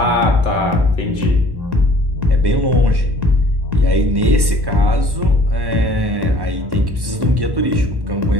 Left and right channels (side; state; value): left; late; 1.1 ms